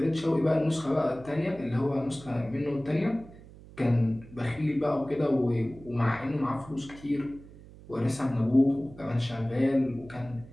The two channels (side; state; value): right; noise; hum, 19 dB below the sound